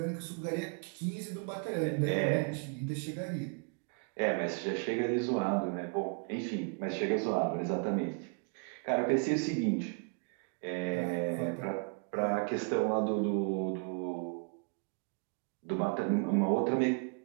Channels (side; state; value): left; quieter; 37.3 dB